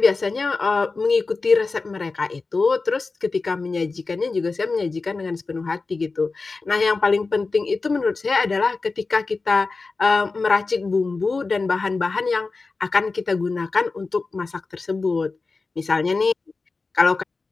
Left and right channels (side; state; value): right; quieter; 4.0 dB